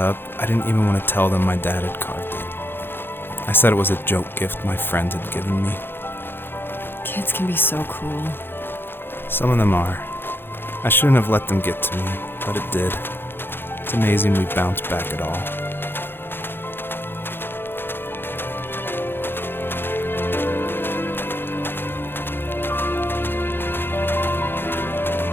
I didn't even want to tell them my dad had carved it. I said it was a joke gift my friend had given me. Kids can be so cruel. Some of them are. I shouldn't have let them get to me, but it did. It's amazing we bounced back at all.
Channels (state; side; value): late; right; 0.10 ms